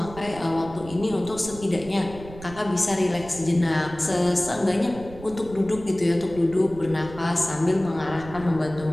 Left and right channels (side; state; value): right; noise; rumble, 15 dB below the sound